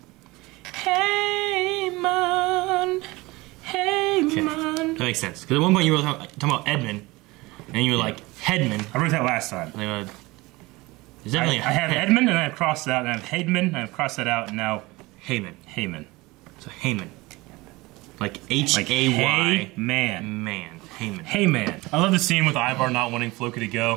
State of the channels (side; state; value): left; quieter; 21.9 dB